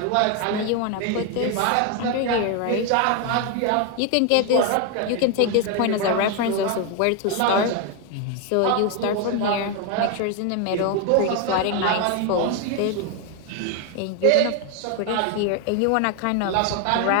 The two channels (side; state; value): both; different; correlation 0.01